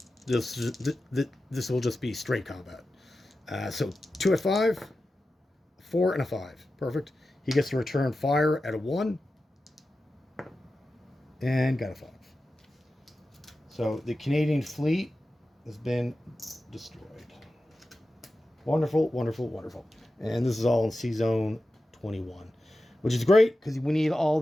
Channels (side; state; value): both; normal; correlation 0.93